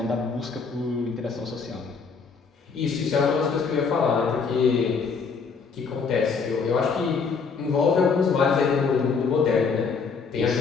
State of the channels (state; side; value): quieter; right; 5.3 dB